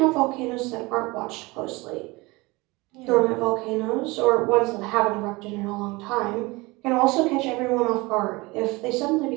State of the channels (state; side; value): quieter; left; 23.3 dB